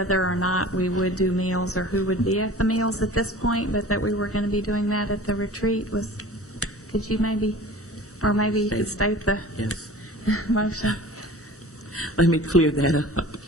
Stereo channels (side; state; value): both; normal; correlation 0.41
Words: or not we would do meals or who would be at the meals at this point, but that we were going to be doing that at the retreat. Could you maybe you could state the motion? Let me clear that up.